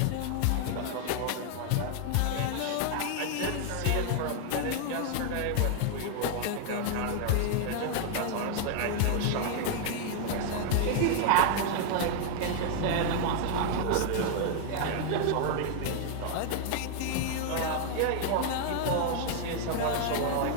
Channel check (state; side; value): different; both; correlation 0.00